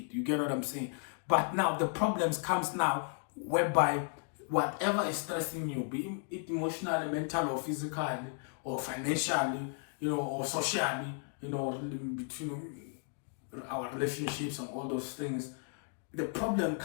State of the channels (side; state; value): right; silent; 55 dB below the other